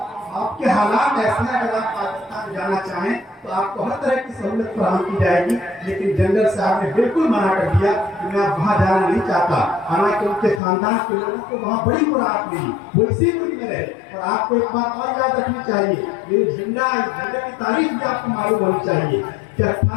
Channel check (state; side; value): drops out; right; at 10.6 s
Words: آپ کے حالات ایسے ہیں، اگر آپ پاکستان جانا چاہیں تو آپ کو ہر طرح کی سہولت فراہم کی جائے گی، لیکن جنرل صاحب نے بالکل منع کر دیا کہ میں وہاں جانا نہیں چاہتا، حالانکہ ان کے خاندان کے لوگوں کو وہاں بڑی مراحت ملی، وہ اسی ملک میں رہے۔ اور آپ کو ایک بات اور یاد رکھنی چاہیے، یہ جھنڈا، اس جھنڈے کی تاریخ بھی آپ کو معلوم ہونی چاہیے کہ